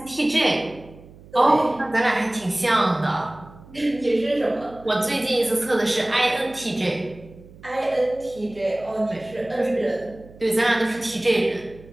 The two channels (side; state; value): right; noise; hum, 21 dB below the sound